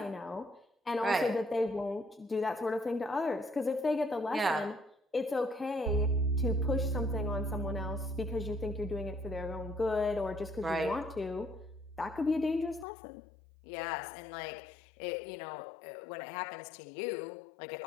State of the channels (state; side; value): drops out; right; at 12.9 s